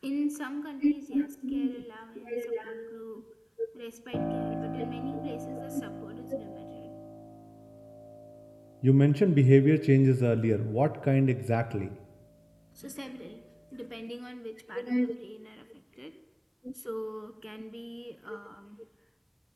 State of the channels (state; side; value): identical; both; correlation 1.00